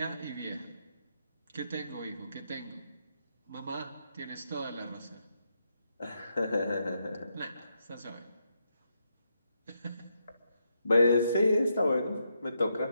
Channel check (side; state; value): both; inverted; correlation -0.80